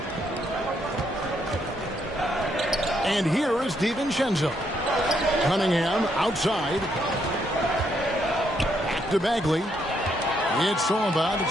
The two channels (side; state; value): both; normal; correlation 0.74